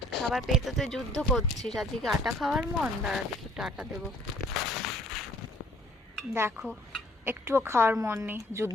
খাবার পেয়ে তো তুই যুদ্ধ করছিস। আজকে আটা খাওয়ার মন? দাঁড়া দেখি, একটু আটা দেবো। দেখো, একটুও খাওয়ার মন নেই,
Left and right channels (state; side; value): normal; both; correlation 0.58